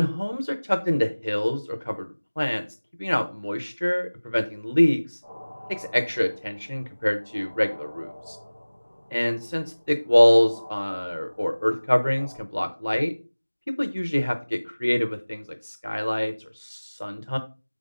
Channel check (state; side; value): inverted; both; correlation -1.00